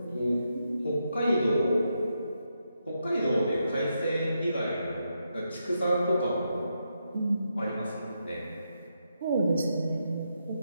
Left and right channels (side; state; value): both; inverted; correlation -0.83